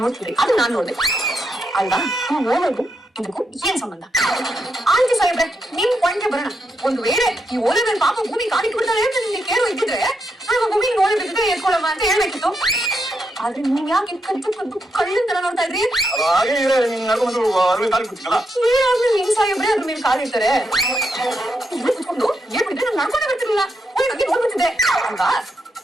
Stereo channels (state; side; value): normal; both; correlation 0.82